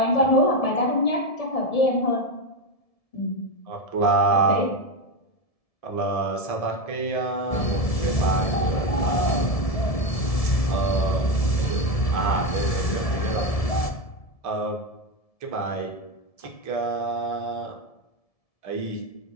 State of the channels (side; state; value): right; late; 1.7 ms